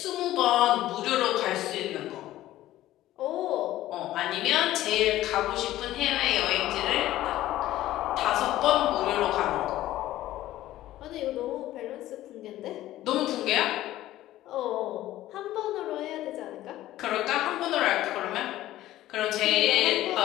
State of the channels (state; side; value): quieter; right; 14.7 dB